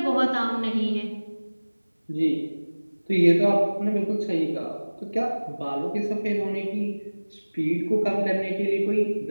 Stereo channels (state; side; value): inverted; both; correlation -1.00